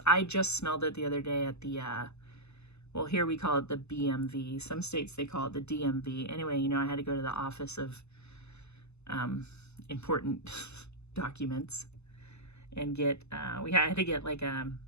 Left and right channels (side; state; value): right; late; 0.81 ms